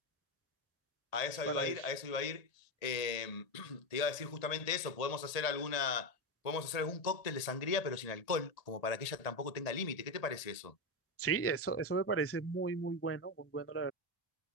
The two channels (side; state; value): right; late; 1.8 ms